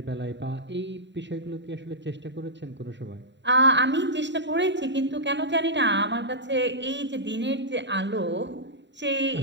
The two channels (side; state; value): left; late; 0.52 ms